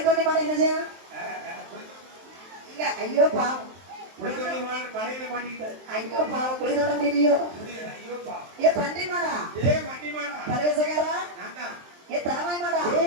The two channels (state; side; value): late; left; 23 ms